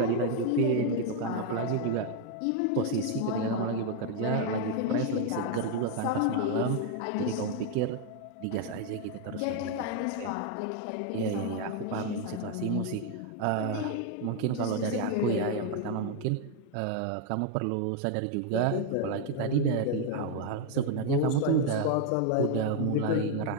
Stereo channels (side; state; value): both; different; correlation 0.01